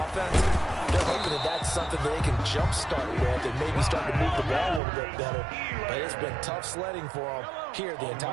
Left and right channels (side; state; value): left; drops out; at 4.8 s